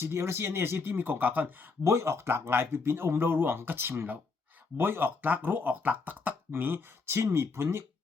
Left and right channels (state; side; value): quieter; right; 4.4 dB